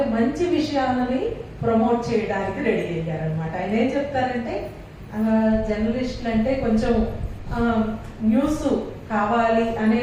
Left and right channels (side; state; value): both; identical; correlation 1.00